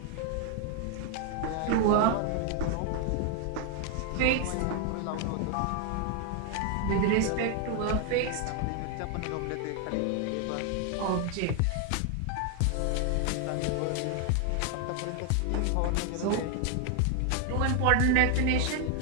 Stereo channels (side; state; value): both; different; correlation 0.00